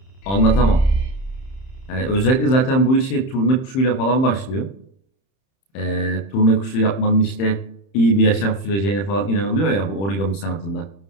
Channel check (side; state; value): right; late; 30 ms